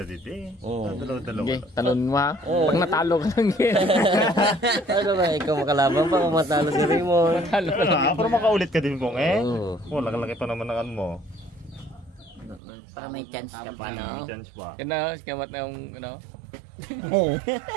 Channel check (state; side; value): drops out; left; at 12.6 s